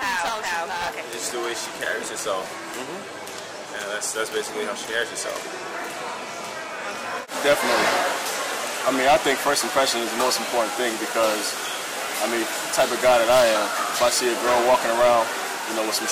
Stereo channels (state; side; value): identical; both; correlation 1.00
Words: Okay. It's the way she carries herself. And that's basically how she carries herself. Definitely. I mean, I think first impression is the most important thing because, I mean, the type of guy that I am, if I see a girl walking around, with some